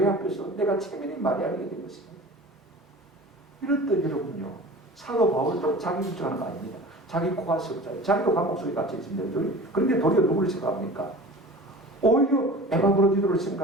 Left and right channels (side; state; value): both; normal; correlation 0.39